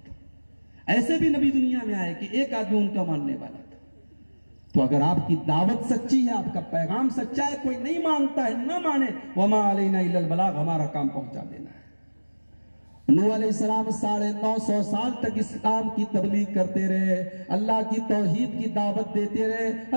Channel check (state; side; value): inverted; both; correlation -1.00